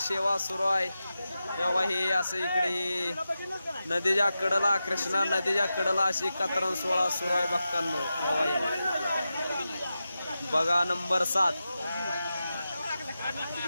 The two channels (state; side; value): inverted; both; correlation -0.91